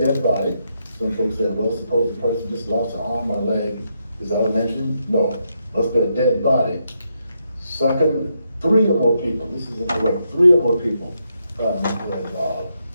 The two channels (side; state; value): both; inverted; correlation -0.80